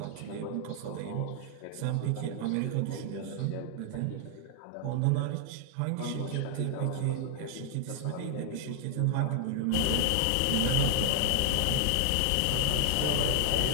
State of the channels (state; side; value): different; both; correlation 0.00